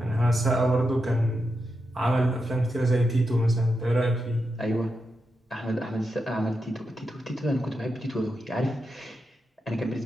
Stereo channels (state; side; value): normal; both; correlation 0.87